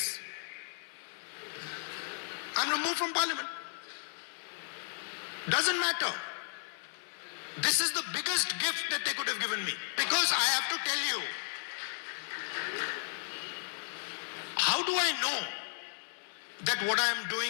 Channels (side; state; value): right; silent; digital silence